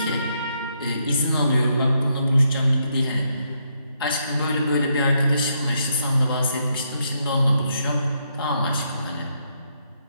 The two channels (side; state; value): both; inverted; correlation -0.77